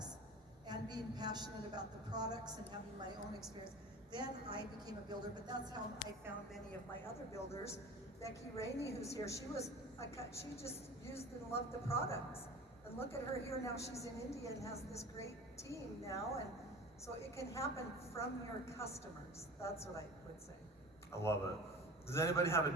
and being passionate about the products and having my own experience. Then I became a builder, but that's how I found many of my other builders. Becky Rainey, who's here, she just used and loved the products. And look at her here now, she's in India and has this great team now. And so it can happen from your customers. That's what I would say. I love it. Does anybody have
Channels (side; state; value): both; normal; correlation 0.37